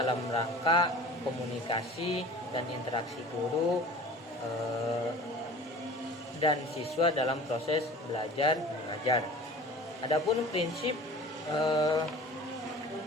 rangka komunikasi dan interaksi guru dan siswa dalam proses belajar mengajar. Adapun prinsip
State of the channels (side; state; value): both; normal; correlation 0.42